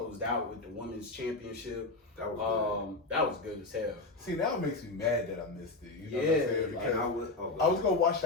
out with the women's championship. That was good as hell. See, now it makes me mad that I missed it. You know Yeah, what I'm saying? Like, Because I was gonna watch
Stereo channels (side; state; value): right; quieter; 3.3 dB